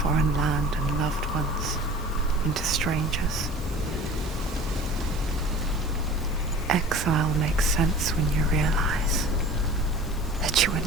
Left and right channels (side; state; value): left; noise; hiss, 21 dB below the sound